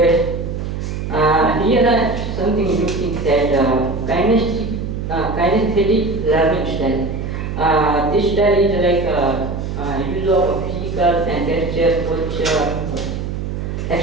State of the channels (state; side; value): noise; right; hum, 5 dB below the sound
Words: Here are something new things that kinesthetic learning style. This style is like use of physical and gesture